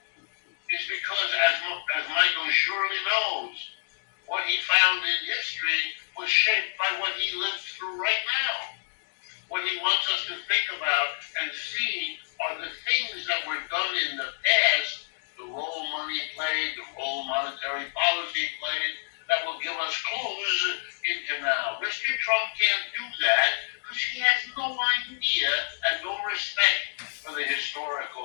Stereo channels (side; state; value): right; silent; digital silence